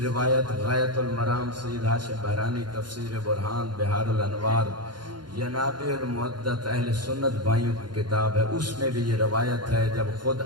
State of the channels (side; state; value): left; late; 0.71 ms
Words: روایت غایت المرام سید ہاشم بحرانی تفسیر برہان بہار الانوار ینابع المعدت اہل سنت بھائیوں کی کتاب ہے، اس میں بھی یہ روایت ہے جب خود